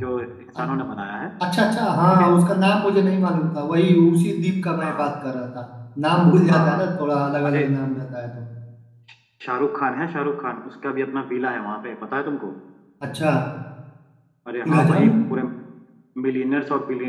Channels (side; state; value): both; identical; correlation 1.00